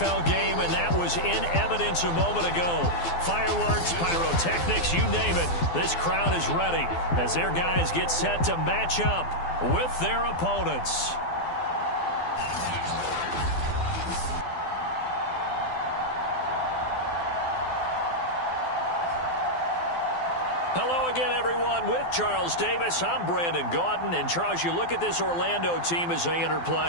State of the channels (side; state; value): right; late; 12 ms